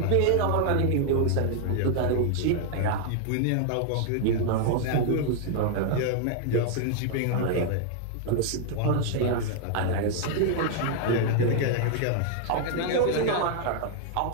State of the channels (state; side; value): different; both; correlation 0.00